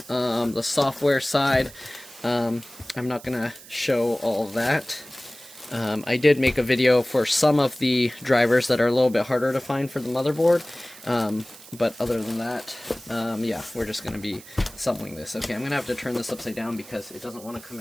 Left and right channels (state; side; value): noise; right; hiss, 19 dB below the sound